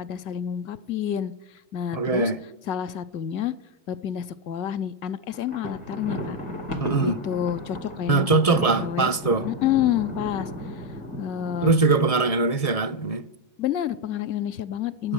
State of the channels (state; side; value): late; right; 1.7 ms